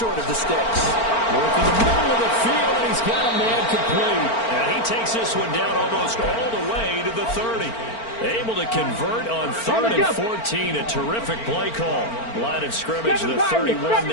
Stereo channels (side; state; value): right; late; 4.4 ms